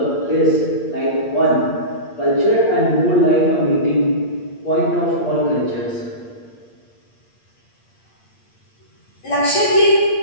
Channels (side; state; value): right; late; 8.6 ms